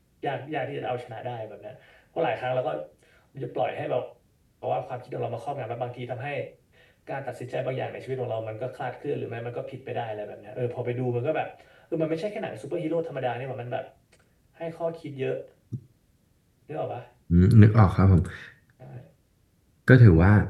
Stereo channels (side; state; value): both; identical; correlation 1.00